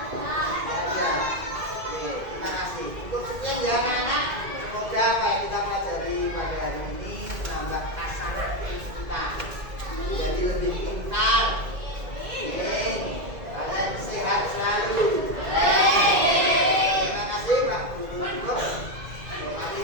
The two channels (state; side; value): late; left; 2.1 ms